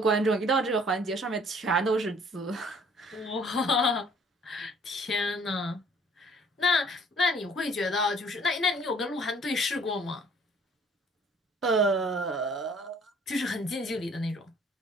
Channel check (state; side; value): normal; both; correlation 0.58